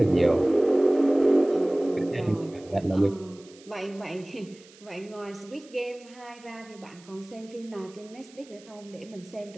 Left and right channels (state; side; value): noise; right; hiss, 24 dB below the sound